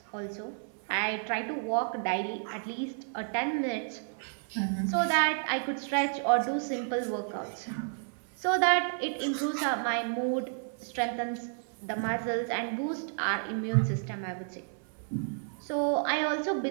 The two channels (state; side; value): silent; left; 57 dB below the other